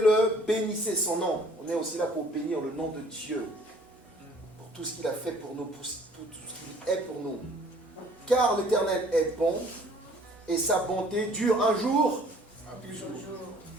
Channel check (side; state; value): both; normal; correlation 0.55